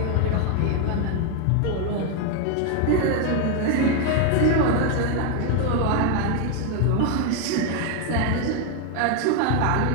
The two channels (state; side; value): different; both; correlation 0.01